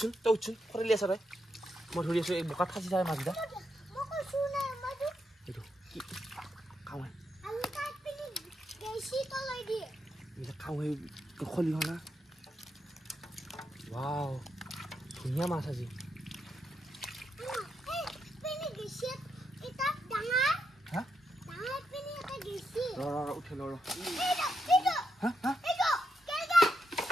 খৰিলি আছা তই মই ধৰি আছোঁ এই বোকাত ফাঁচি যায় মাছকেইটা এইটো কি খাওঁ খাওঁ খলি হনা ৱাও ধুনীয়া মাছ আজি উঠিল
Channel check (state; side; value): normal; both; correlation 0.82